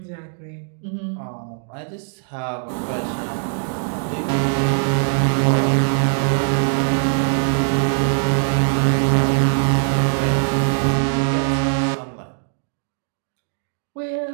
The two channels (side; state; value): left; silent; digital silence